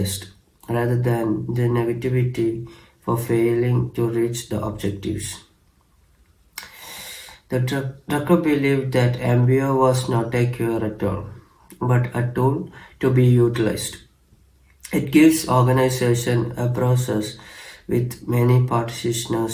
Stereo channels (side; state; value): both; identical; correlation 1.00